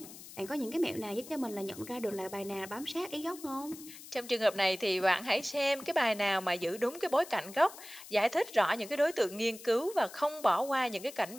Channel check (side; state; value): left; noise; hiss, 16 dB below the sound